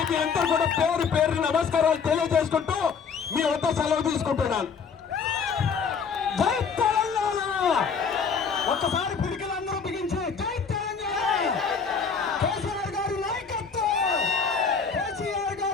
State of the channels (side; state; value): right; quieter; 5.9 dB